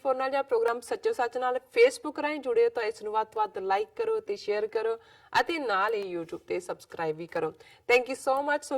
नाल ਜਾਂ प्रोग्राम सच्चो सच नाल फेसबुक राਹੀਂ जुड़े हो तो इस ਨੂੰ ਵੱਧ ਤੋਂ ਵੱਧ लाइक करो ते शेयर करो ਅਤੇ ਨਾਲ ही YouTube ਤੇ ਸਬਸਕ੍ਰਾਈਬ भी करो। Thank you so much. So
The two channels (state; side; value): identical; both; correlation 1.00